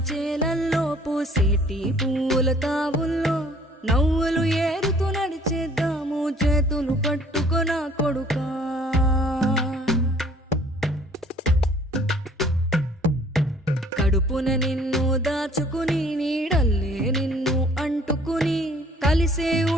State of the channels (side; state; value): both; normal; correlation 0.56